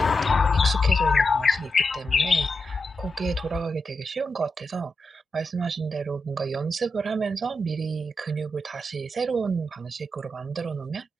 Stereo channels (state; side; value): normal; both; correlation 0.87